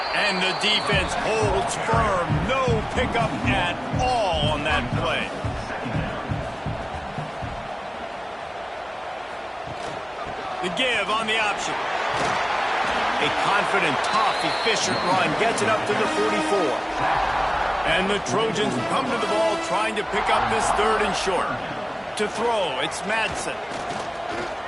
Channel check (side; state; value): both; identical; correlation 1.00